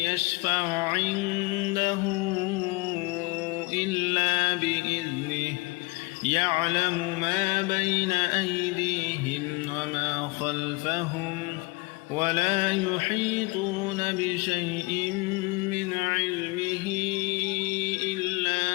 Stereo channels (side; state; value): right; quieter; 26.1 dB